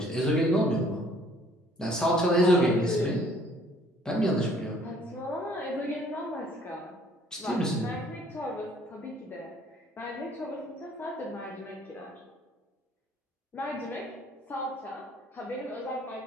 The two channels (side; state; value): both; normal; correlation 0.59